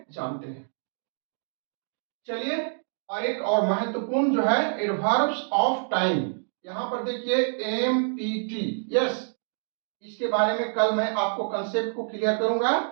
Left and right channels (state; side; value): silent; left; digital silence